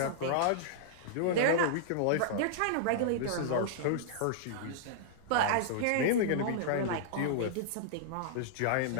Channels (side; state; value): both; different; correlation -0.02